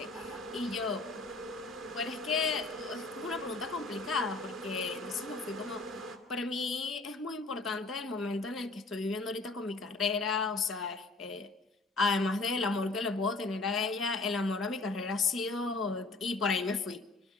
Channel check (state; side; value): quieter; right; 3.5 dB